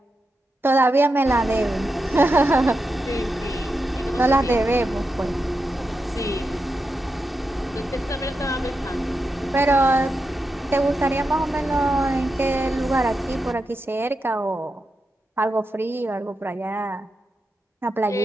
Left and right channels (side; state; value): both; normal; correlation 0.88